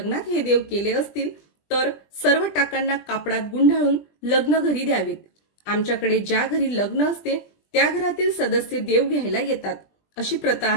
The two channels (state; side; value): late; right; 20 ms